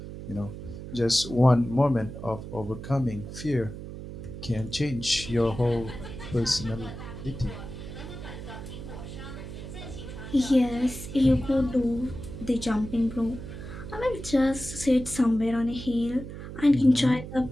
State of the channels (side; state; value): right; noise; hum, 10 dB below the sound